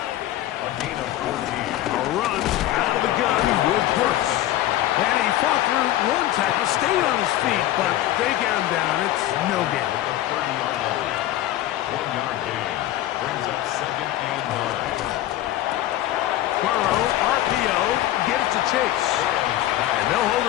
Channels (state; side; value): quieter; right; 14.1 dB